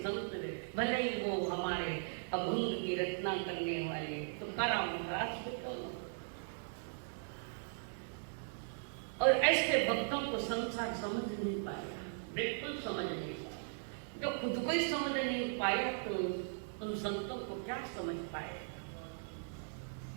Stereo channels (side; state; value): left; silent; digital silence